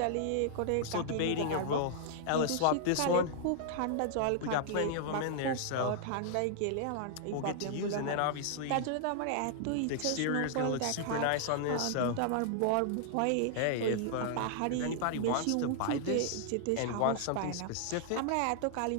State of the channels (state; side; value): different; both; correlation -0.01